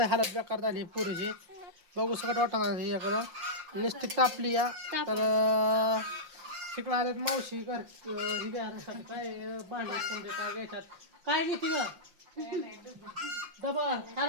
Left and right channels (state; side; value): late; left; 5.7 ms